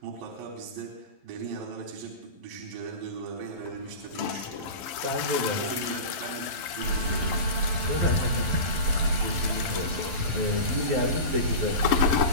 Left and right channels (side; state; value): left; late; 11 ms